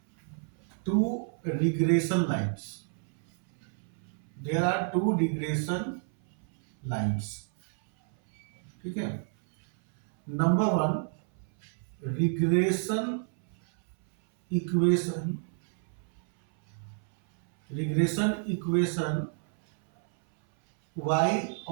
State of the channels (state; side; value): silent; left; 58 dB below the other